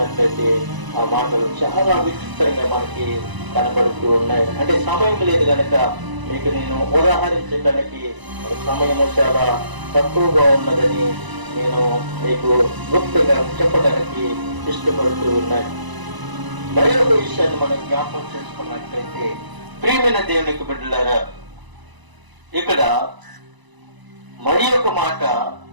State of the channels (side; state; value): left; late; 1.0 ms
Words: ఆ మాటలు చాలా విచిత్రంగా మనకి కనపడుతూ ఉన్నాయి. అంటే సమయం లేదు కనుక మీకు నేను ఉదాహరించడానికి సమయం చాలా తక్కువగా ఉన్నదని నేను మీకు గుప్తంగా చెప్పడానికి ఇష్టపడుతూ ఉన్నాయి. మరి ఒక విషయాన్ని మనం జ్ఞాపకం చేసుకున్నట్లయితే ప్రియమైన దేవునికి బిడ్డలారా, ఇక్కడ మరి ఒక మాట